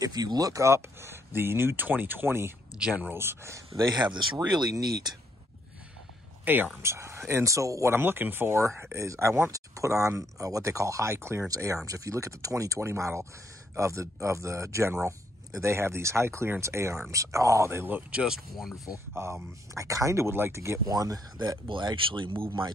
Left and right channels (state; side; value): normal; both; correlation 0.72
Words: you look up the new 2020 Generals, they have this really neat A-arms. And so what I'm looking for is I want to put on what they call high clearance A-arms. If you look at the 2020 model of the General, they have these high clearance A-arms. Oh, they look just wonderful. I kind of would like to get one that will actually move my